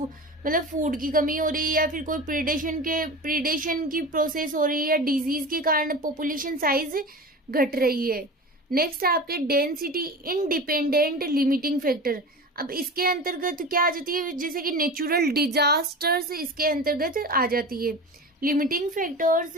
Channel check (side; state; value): both; normal; correlation 0.31